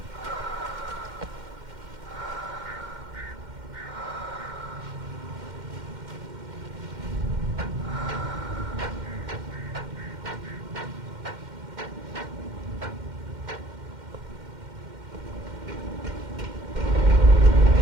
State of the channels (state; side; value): late; left; 2.1 ms